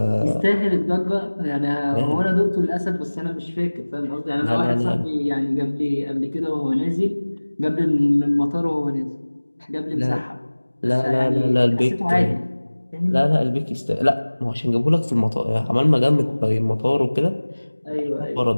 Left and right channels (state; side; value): inverted; both; correlation -1.00